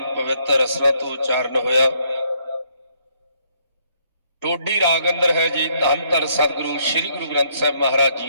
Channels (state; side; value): inverted; both; correlation -0.70